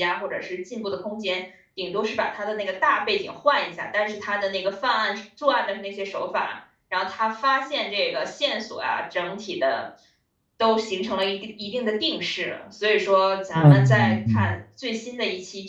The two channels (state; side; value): identical; both; correlation 1.00